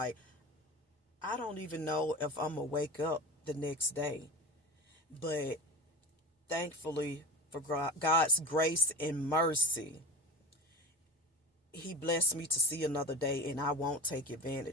I don't even know if I'm gonna wake up the next day. But thankfully, for God's grace and mercy, He blessed me to see another day, and I won't take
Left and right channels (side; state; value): both; normal; correlation 0.33